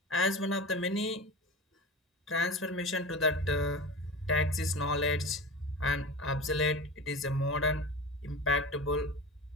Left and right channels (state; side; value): normal; both; correlation 0.30